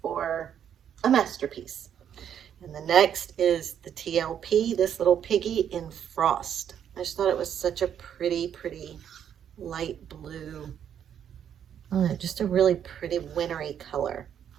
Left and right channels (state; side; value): quieter; left; 9.1 dB